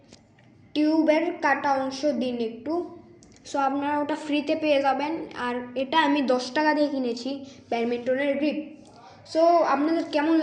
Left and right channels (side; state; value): both; identical; correlation 1.00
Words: টিউবের কাটা অংশ দিন একটু। সো আপনারা ওটা ফ্রিতে পেয়ে যাবেন। আর এটা আমি 10 টাকা দিয়ে কিনেছি ব্যাডমিন্টনের গ্রিপ। সো আপনাদের কেমন